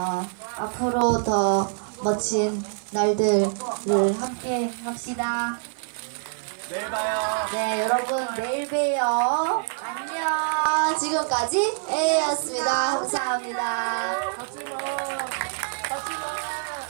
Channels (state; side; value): silent; left; digital silence